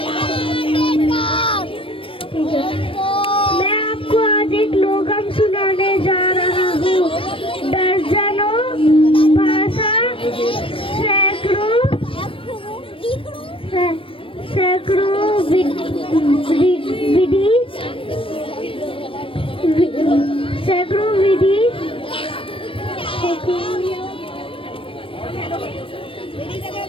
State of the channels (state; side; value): late; right; 0.26 ms